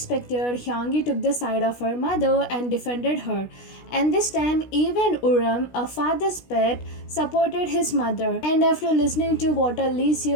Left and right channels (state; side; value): late; right; 16 ms